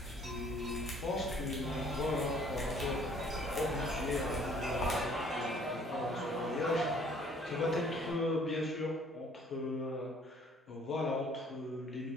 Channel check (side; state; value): both; normal; correlation 0.58